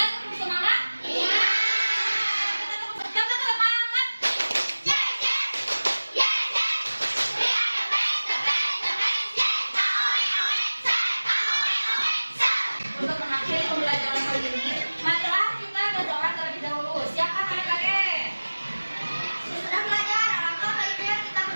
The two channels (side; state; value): both; inverted; correlation -1.00